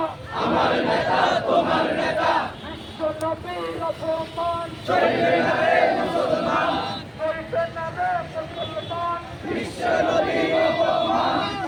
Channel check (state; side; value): identical; both; correlation 1.00